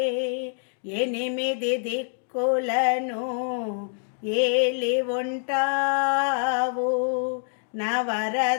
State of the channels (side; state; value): right; silent; digital silence